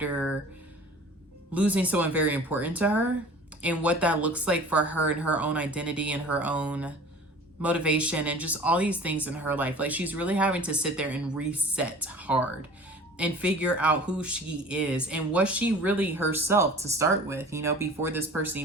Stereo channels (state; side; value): normal; both; correlation 0.43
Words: losing someone very important to her, and what that looks like for her and her own identity and her own motivation and just all these things in her life. Like, she's really having to sit there and reset hard and figure out who she is and was she really herself to start with, you know, before this person